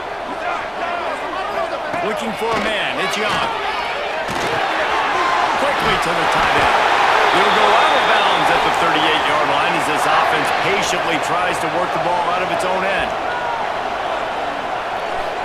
Looking for a man, it's Young. Quickly to the tight end. He'll go out of bounds at the 38-yard line as this offense patiently tries to work the ball out of its own end.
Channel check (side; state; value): both; identical; correlation 1.00